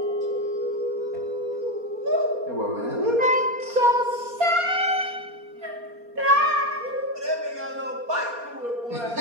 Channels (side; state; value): left; late; 4.3 ms